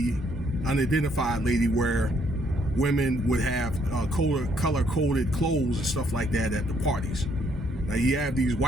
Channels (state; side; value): normal; both; correlation 0.69